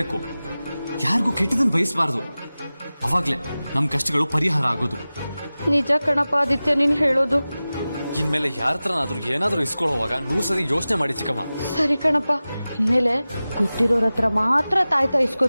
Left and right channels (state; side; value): inverted; both; correlation -0.97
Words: ಯಾರಿಗೂ ಕೆಟ್ಟದನ್ನು ಬಯಸಬಾರ್ದು. ಅವಾಗ್ಲೇ ನಮ್ ಕಷ್ಟಗಳು ಪರಿಹಾರ ಆಗೋದು. ನಿಜ ಕಣಪ್ಪ ಆದಿತ್ಯ ನೀನ್ ಹೇಳೋದು. ಇನ್ಮೇಲೆ ಯಾರ ಹತ್ರನಾದ್ರೂ ಏನಾದ್ರೂ ಇಸ್ಕೊಳ್ಳೋವಾಗ 100 ಸರಿ ಯೋಚನೆ ಮಾಡಿ ಚಿಕ್ಕಮ್ಮ. ಸರಿ ಕಣಪ್ಪ, ಇನ್ಮೇಲೆ ಗೊತ್ತಿರೋರ ಹತ್ರ ಮಾತ್ರ ತಾಯ್ತಾ